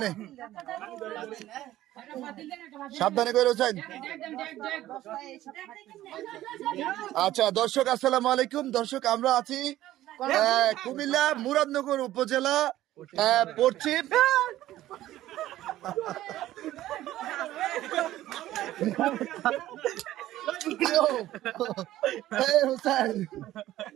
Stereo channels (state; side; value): quieter; left; 14.4 dB